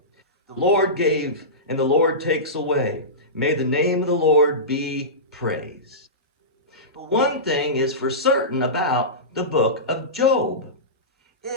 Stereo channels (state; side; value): normal; both; correlation -0.19